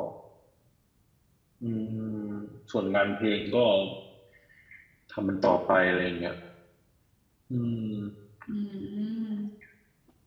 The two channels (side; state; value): both; identical; correlation 1.00